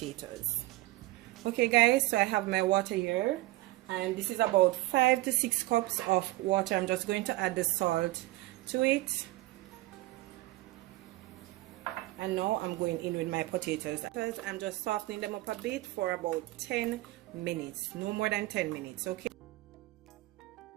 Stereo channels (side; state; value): left; quieter; 19.1 dB